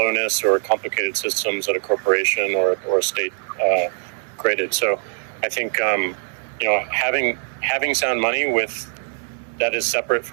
or complicated systems that a corporation or a state created. So I think having sound money that is separate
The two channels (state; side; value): silent; left; digital silence